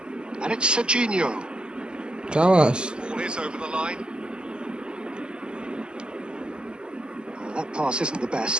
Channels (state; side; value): late; left; 0.049 ms